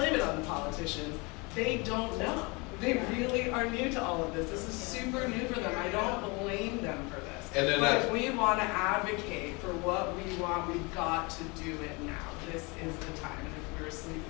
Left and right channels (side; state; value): right; quieter; 28.0 dB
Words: it on the politicians. They don't know. They really are new to all of this. This is super new for them. I don't blame them for this. And then but if we want to advocate for what we want, we've got to do it now. This is the time. And if we're asleep,